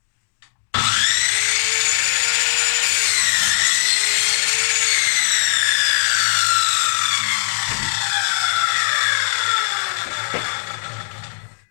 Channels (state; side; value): silent; right; digital silence